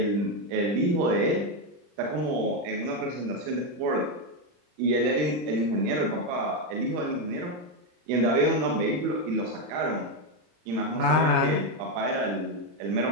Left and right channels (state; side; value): late; left; 39 ms